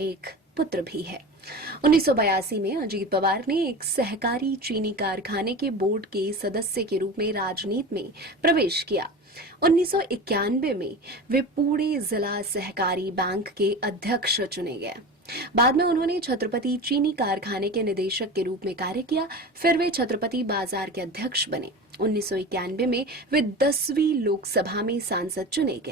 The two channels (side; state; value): both; normal; correlation 0.30